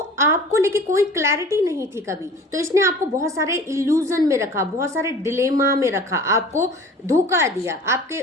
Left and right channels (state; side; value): normal; both; correlation 0.43